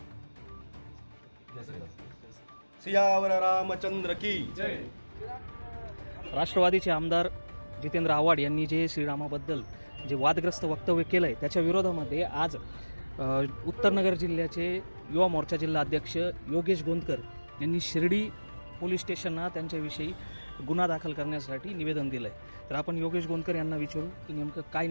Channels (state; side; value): inverted; both; correlation -1.00